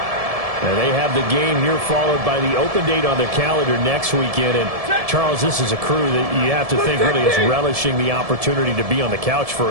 And they have the game here followed by the open date on their calendar next weekend. And, Charles, this is a crew that you have to think really is relishing the opportunity to be on the couch for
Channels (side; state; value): left; late; 1.7 ms